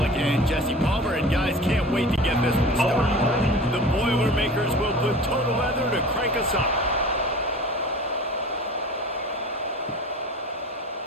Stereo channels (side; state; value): both; normal; correlation 0.40